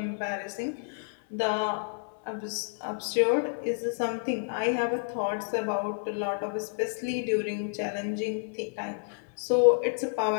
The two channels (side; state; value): right; silent; digital silence